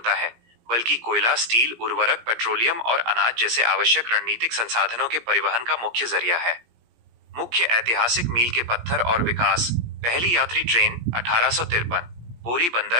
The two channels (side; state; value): left; late; 17 ms